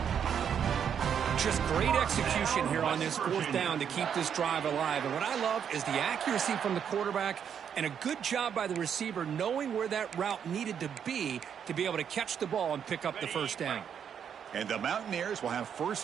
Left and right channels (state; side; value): quieter; left; 8.1 dB